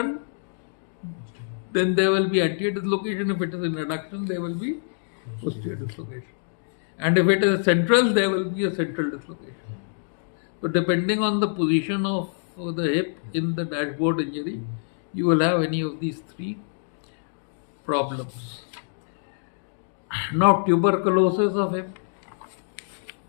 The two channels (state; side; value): silent; right; digital silence